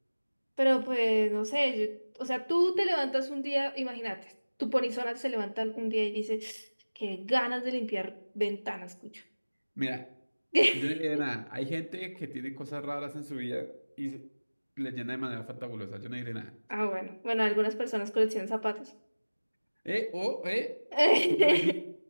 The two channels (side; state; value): both; inverted; correlation -1.00